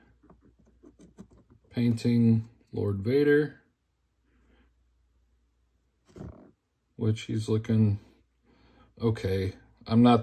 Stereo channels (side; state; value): both; identical; correlation 1.00